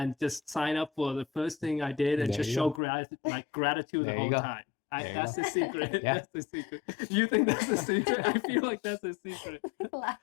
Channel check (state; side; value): drops out; right; at 2.8 s